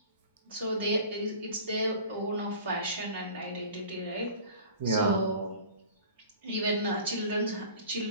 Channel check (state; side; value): inverted; both; correlation -0.42